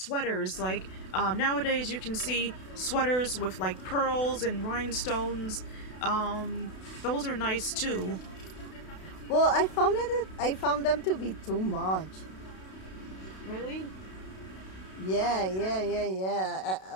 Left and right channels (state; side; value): late; right; 32 ms